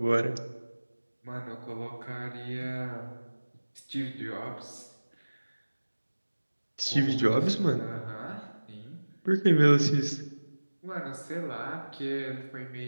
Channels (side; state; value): both; inverted; correlation -1.00